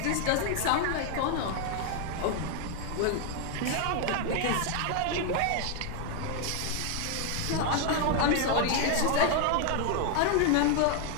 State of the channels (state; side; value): different; both; correlation 0.01